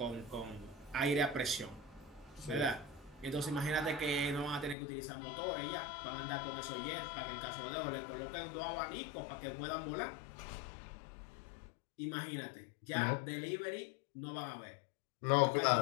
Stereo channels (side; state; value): right; drops out; at 4.8 s